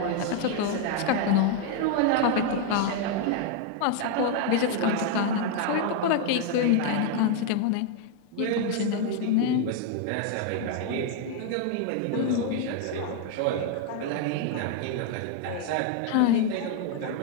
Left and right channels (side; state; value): both; different; correlation 0.01